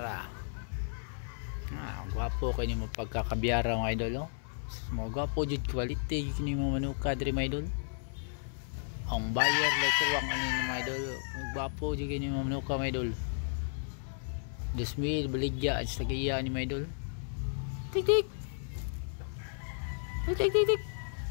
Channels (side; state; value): right; silent; 55 dB below the other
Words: gwapo kayo ni mo pagkakabyara mga idol mga gwapo jud quality yun yung mga manuka diri mga idol ang buyer like tuwang ano yung mga idol gwapo jud kayo yung mga manuka mga idol 2,000 baligya at sa kaya ni mga idol Tik tik. Tik tik tik tik.